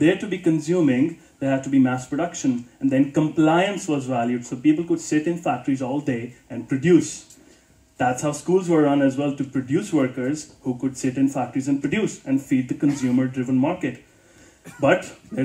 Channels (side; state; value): both; identical; correlation 1.00